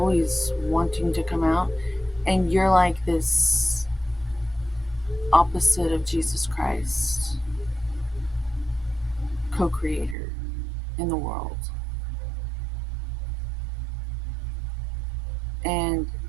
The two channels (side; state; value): left; drops out; at 10.2 s